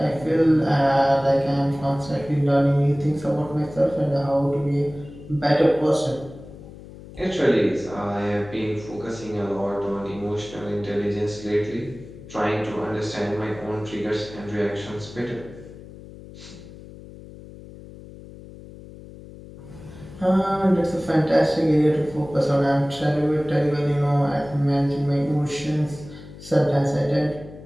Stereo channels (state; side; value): noise; left; hum, 17 dB below the sound